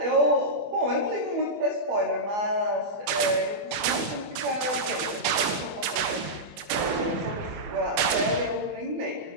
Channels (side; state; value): left; late; 24 ms